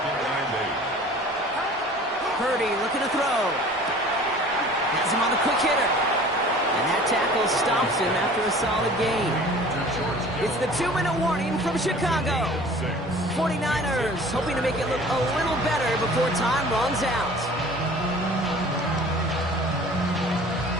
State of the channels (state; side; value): normal; both; correlation 0.46